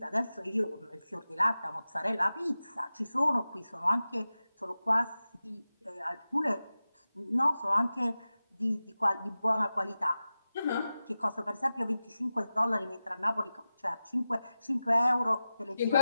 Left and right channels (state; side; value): inverted; both; correlation -0.95